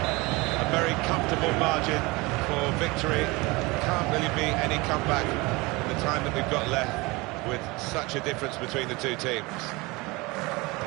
A very comfortable margin for victory. Can't really be any comeback in the time that we've got left with such a difference between the two teams.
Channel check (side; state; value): left; quieter; 23.8 dB